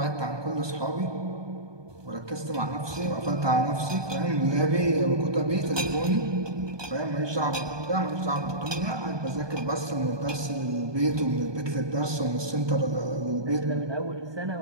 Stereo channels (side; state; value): left; late; 1.2 ms